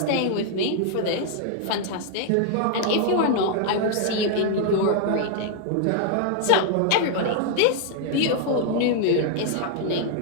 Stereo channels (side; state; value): both; different; correlation 0.00